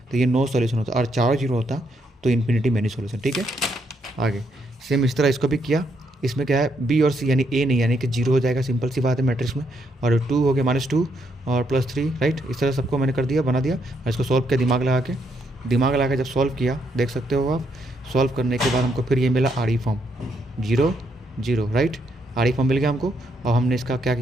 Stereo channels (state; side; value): normal; both; correlation 0.75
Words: तो ये नो सॉल्यूशन होता, और चारों 0 होता तो इन्फिनिटी मैनी सॉल्यूशन, ठीक है। आगे सेम इस तरह इसको भी किया। इसमें क्या है, बी और सी यानी ए नहीं, यानी कि 0 हो जाएगा, सिंपल सी बात है मैट्रिक्स में। और 2 हो गया -2 और +3, राइट। इस तरह सबको मैंने कर दिया, बना दिया, और इसको सॉल्व किया दिमाग लगा के जब सॉल्व किया, देख सकते हो आप, सॉल्व करने के बाद हमको फिर ये मिला R E form 0 0, right. R E form मिल गया हमको, और हमने इसका क्या